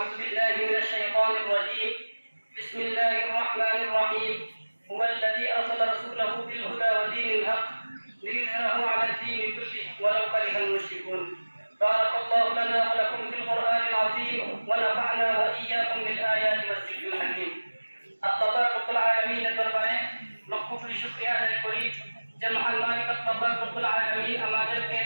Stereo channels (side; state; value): both; inverted; correlation -1.00